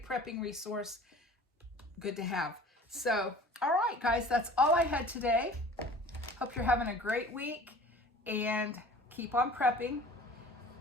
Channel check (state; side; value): normal; both; correlation 0.45